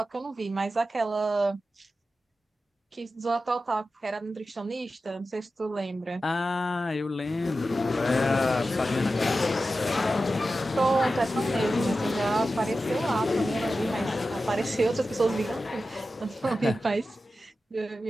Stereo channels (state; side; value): normal; both; correlation 0.92